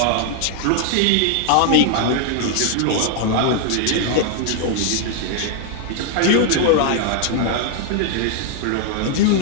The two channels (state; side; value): different; both; correlation 0.00